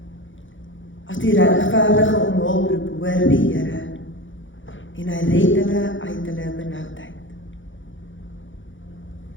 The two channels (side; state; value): right; late; 0.56 ms